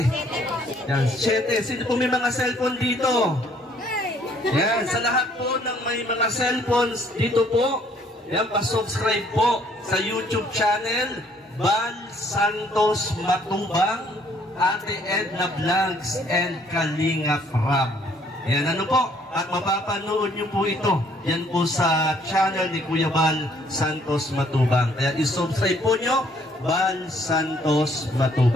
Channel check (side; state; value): both; normal; correlation 0.63